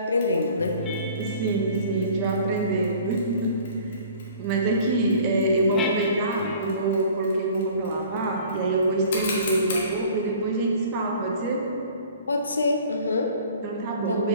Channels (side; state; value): both; inverted; correlation -0.48